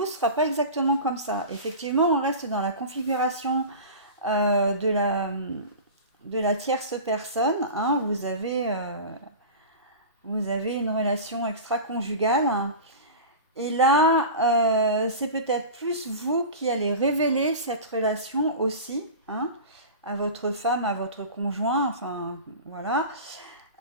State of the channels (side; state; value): both; inverted; correlation -0.32